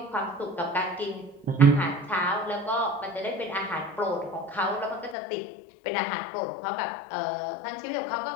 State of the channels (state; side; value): drops out; right; at 5.2 s